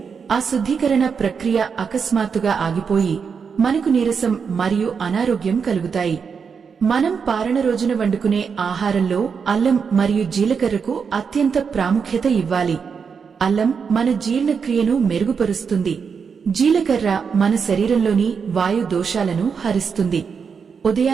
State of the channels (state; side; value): quieter; left; 6.1 dB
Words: ఆ శుద్ధీకరణ ప్రక్రియ అకస్మాత్తుగా ఆగిపోయి మనకు నీరసం మరియు అనారోగ్యం కలుగుతాయి. మనం పారణ రోజున వండుకునే ఆహారంలో అల్లం మరియు జీలకర్రకు అత్యంత ప్రాముఖ్యత ఇవ్వాలి. అల్లం మన జీర్ణక్రియను మెరుగుపరుస్తుంది. జీలకర్ర మన శరీరంలోని వాయు దోషాలను హరిస్తుంది.